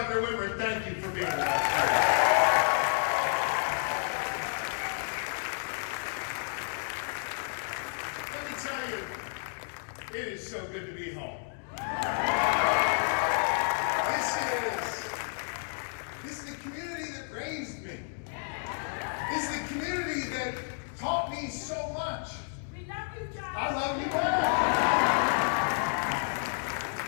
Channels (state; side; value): silent; right; 57 dB below the other